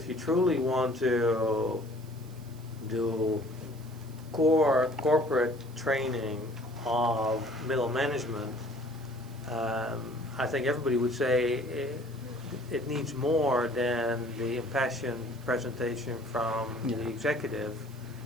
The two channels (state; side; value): noise; right; hiss, 25 dB below the sound